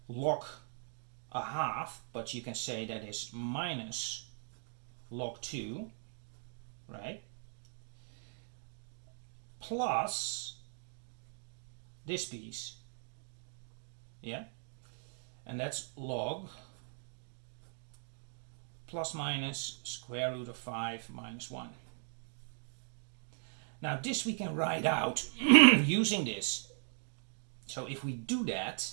log a half, but you can say that is minus log 2, right? Plus this piece, and that's log plus minus square root of 5 minus 1. Now this we can write out using this. So if we do that,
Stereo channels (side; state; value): left; silent; 52 dB below the other